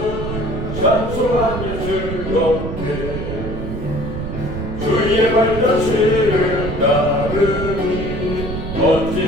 발자취를 따르니 어찌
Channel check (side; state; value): right; noise; rumble, 5 dB below the sound